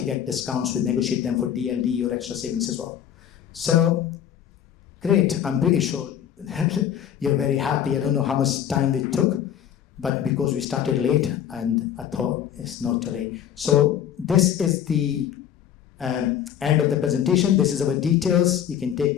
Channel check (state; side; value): quieter; right; 9.7 dB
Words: get discounts. We negotiate them for DLD or extra savings as well. So great. I'm pretty sure you're very happy. I don't know how much time we took, but because we started late, and I thought it's not too late. So this is the end of the presentation. This is our details. You can take